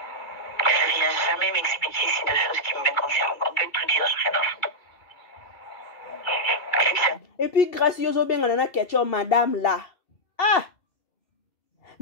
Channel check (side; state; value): right; late; 2.3 ms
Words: Je ne viens jamais m'expliquer si de choses qui me concernent. On peut tout dire, j'ai rien à foutre. Et puis, grâce à bien on a question madame là.